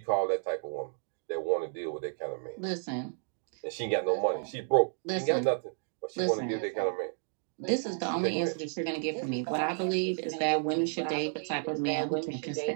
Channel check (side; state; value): left; silent; 57 dB below the other